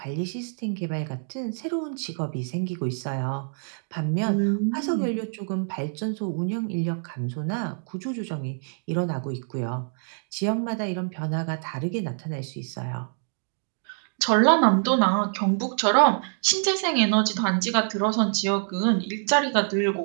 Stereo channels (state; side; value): silent; left; digital silence